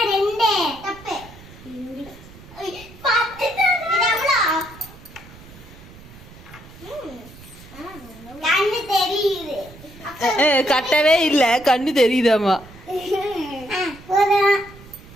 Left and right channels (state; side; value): noise; right; rumble, 20 dB below the sound